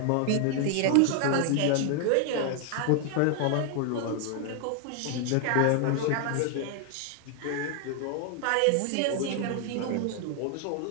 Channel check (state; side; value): different; both; correlation 0.00